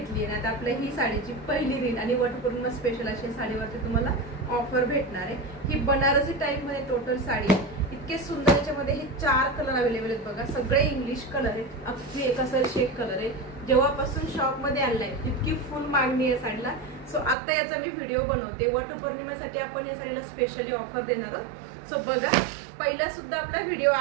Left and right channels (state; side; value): drops out; left; at 17.4 s